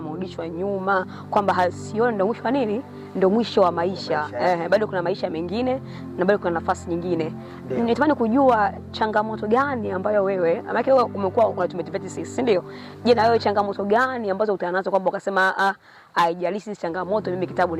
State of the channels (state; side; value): identical; both; correlation 1.00